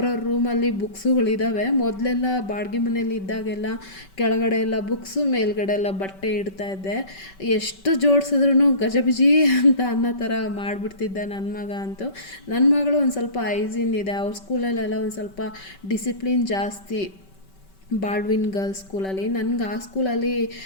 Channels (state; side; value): late; right; 5.2 ms